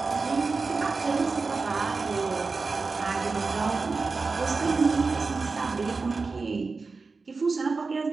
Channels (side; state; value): left; quieter; 4.2 dB